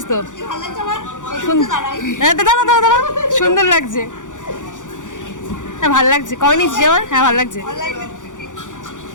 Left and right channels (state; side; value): late; right; 0.87 ms